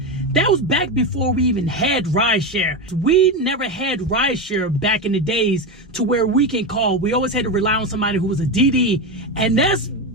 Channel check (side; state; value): both; normal; correlation 0.15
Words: That was back before we even had rideshare. We never had rideshare back in the days to where we can call. We always had to rely on somebody who was a DD, and that's